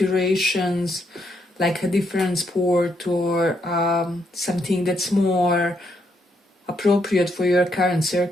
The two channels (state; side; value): normal; both; correlation 0.76